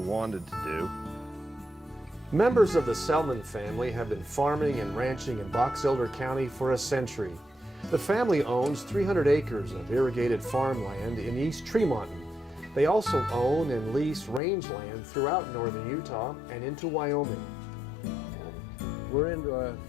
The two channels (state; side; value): drops out; right; at 14.4 s